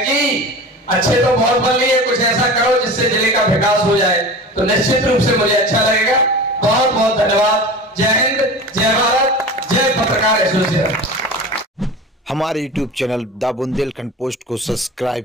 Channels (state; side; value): normal; both; correlation 0.34